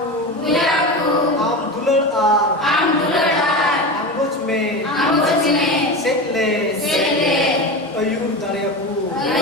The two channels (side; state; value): both; normal; correlation 0.25